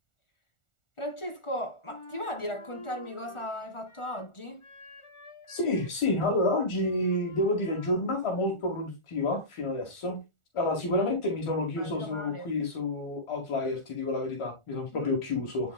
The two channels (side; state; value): right; late; 1.4 ms